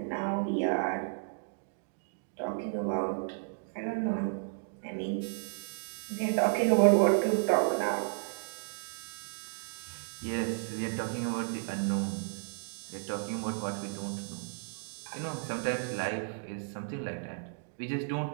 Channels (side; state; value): left; silent; digital silence